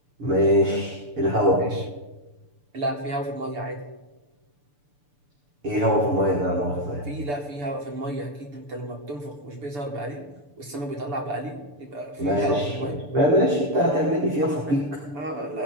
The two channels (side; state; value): left; late; 6.9 ms